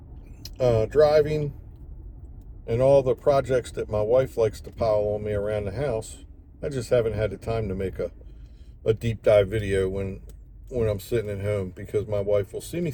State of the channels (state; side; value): identical; both; correlation 1.00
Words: driving, and all the projects that my wife likes to pile on me around the house, I just haven't had the time to make a deep dive video when I'm sitting at home, because my wife will see me